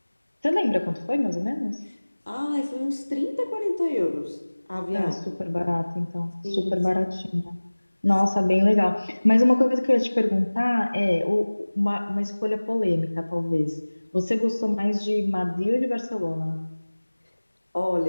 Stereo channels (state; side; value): inverted; both; correlation -1.00